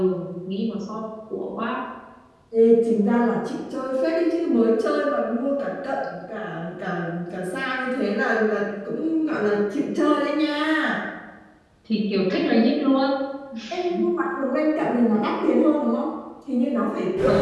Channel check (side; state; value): both; identical; correlation 1.00